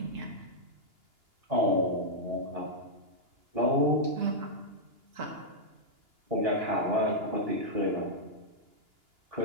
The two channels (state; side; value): late; left; 2.9 ms